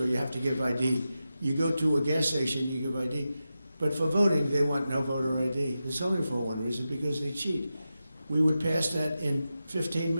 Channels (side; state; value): both; inverted; correlation -0.91